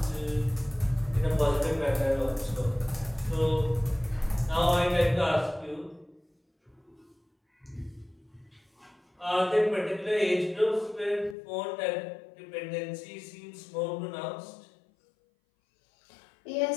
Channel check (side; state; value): right; drops out; at 11.4 s